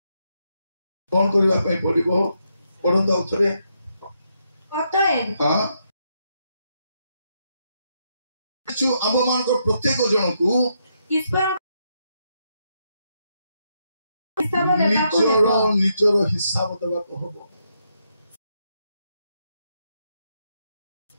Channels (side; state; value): both; inverted; correlation -0.79